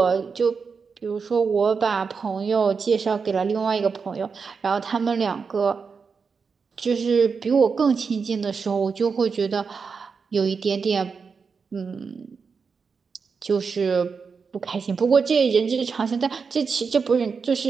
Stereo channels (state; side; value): quieter; left; 5.4 dB